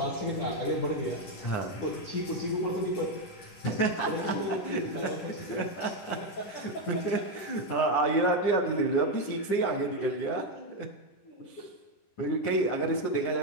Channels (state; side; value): late; right; 10 ms